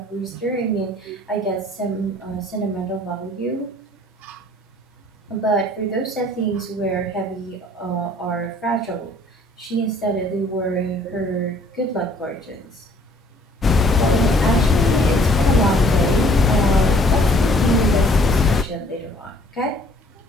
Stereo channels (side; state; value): both; normal; correlation 0.58